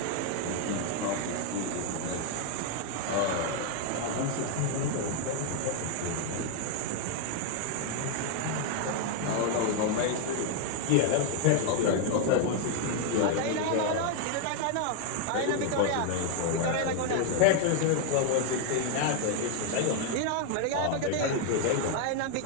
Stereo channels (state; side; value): different; both; correlation 0.00